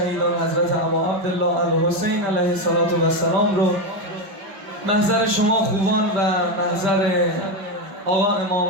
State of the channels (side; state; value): left; late; 5.1 ms